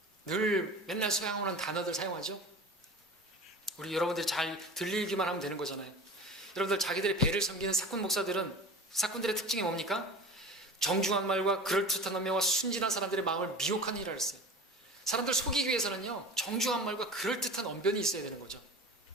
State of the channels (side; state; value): both; normal; correlation 0.35